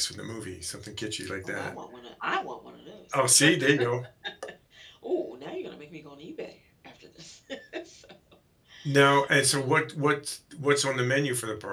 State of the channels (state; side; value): identical; both; correlation 1.00